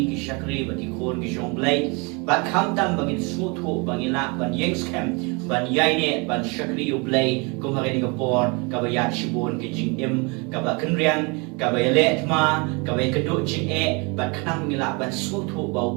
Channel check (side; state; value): left; quieter; 30.2 dB